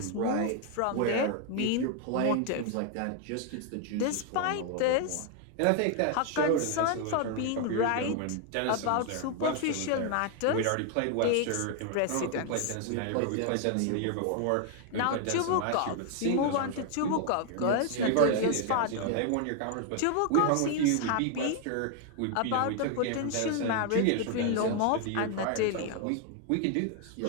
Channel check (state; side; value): different; both; correlation 0.00